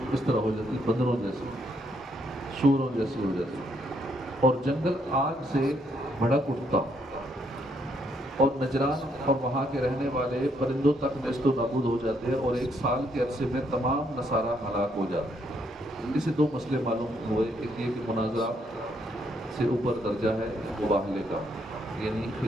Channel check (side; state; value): both; normal; correlation 0.73